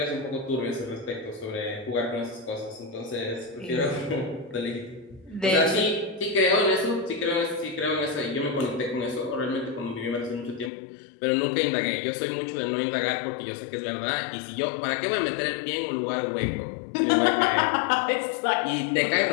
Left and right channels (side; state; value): right; drops out; at 10.7 s